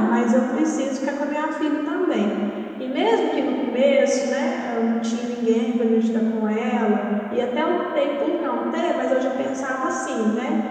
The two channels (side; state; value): both; identical; correlation 1.00